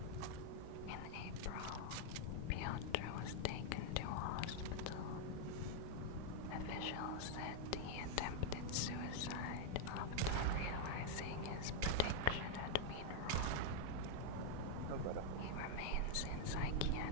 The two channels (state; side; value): different; both; correlation -0.01